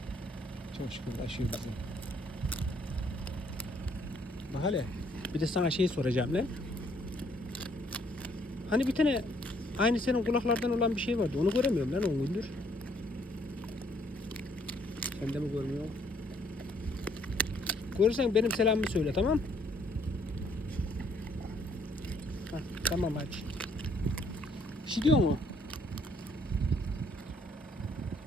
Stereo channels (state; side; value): normal; both; correlation 0.66